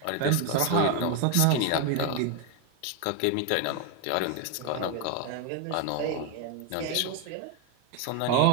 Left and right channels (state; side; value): different; both; correlation 0.01